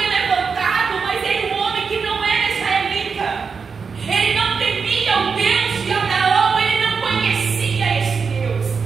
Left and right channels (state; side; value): quieter; left; 5.5 dB